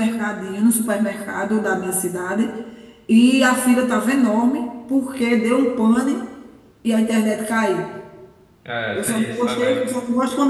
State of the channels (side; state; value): both; identical; correlation 1.00